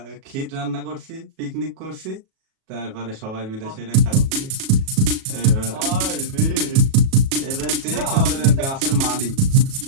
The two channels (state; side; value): late; left; 37 ms